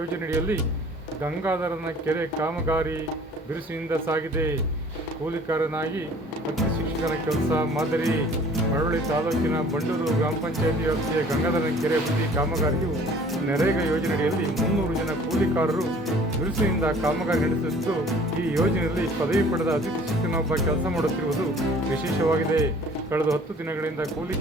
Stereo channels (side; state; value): both; normal; correlation 0.51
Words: ಗಂಗಾಧರನ ಕೆರೆ ಕಾಮಗಾರಿ ಬಿರುಸಿನಿಂದ ಸಾಗಿದೆ. ಕೂಲಿಕಾರನಾಗಿ ಅತಿ ಶಿಕ್ಷಕನ ಕೆಲಸ ಮಾದರಿ. ಮಳವಳ್ಳಿ ತಾಲೂಕಿನ ಬಂಡೂರು ಗ್ರಾಮ ಪಂಚಾಯಿತಿ ವ್ಯಾಪ್ತಿಯ ಗಂಗಾಧರನ ಕೆರೆ ಅಭಿವೃದ್ಧಿ ಕಾಮಗಾರಿಯು ನರೇಗಾ ಯೋಜನೆಯಡಿಯಲ್ಲಿ 300 ಜನ ಕೂಲಿಕಾರರು ಬಿರುಸಿನಿಂದ ಕಾಮಗಾರಿ ನಡೆಸುತ್ತಿದ್ದು, ಈ ಯೋಜನೆಯಲ್ಲಿ ಪದವಿ ಪಡೆದ ಅತಿಥಿ ಶಿಕ್ಷಕನೊಬ್ಬ ಕೆಲಸ ಮಾಡುತ್ತಿರುವುದು ವಿಶೇಷವಾಗಿದೆ. ಕಳೆದ 10 ದಿನಗಳಿಂದ ಕೂಲಿ